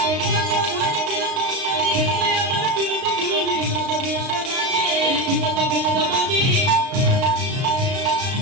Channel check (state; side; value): late; left; 35 ms